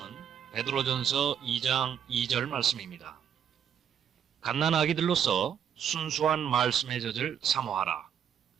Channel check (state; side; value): quieter; left; 8.6 dB